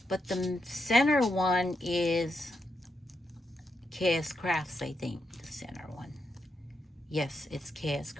but the center one is KS Crafts, I think, the center one. Yes, it's KS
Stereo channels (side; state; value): both; normal; correlation 0.83